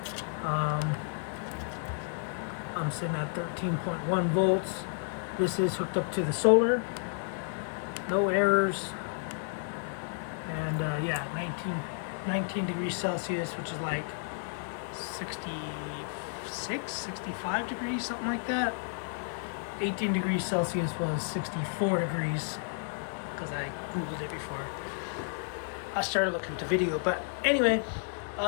I'm sitting at 13.1 volts. This is hooked up to the solar. No errors. And yeah, 19 degrees Celsius, which is like 66, 65 degrees, something like that. 18 degrees Celsius was 64 degrees, because I Googled it before I started looking at the video. But anyway,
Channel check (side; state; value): right; silent; digital silence